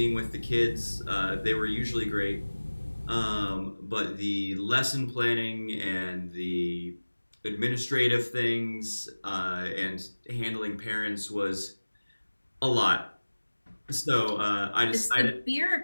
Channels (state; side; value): inverted; both; correlation -1.00